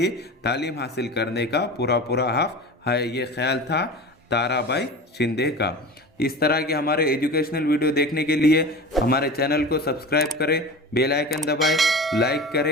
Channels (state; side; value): normal; both; correlation 0.33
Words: तालीम हासिल करने का पूरा हक है। ये ख्याल था ताराबाई शिंदे का। इस तरह के हमारे एजुकेशनल वीडियो देखने के लिए हमारे चैनल को सब्सक्राइब करें, बेल आइकन दबाएं, लाइक